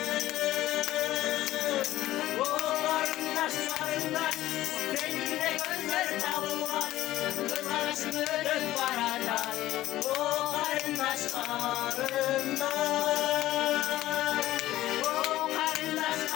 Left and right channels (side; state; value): right; quieter; 15.1 dB